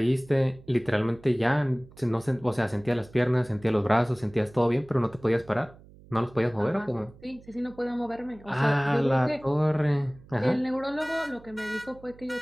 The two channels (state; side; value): noise; right; hum, 23 dB below the sound